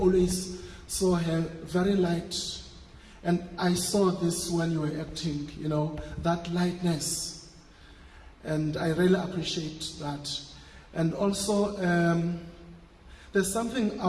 saw her, very light. And I saw this when you were acting, that lightness. And I really appreciate that. And also, there's something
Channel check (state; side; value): identical; both; correlation 1.00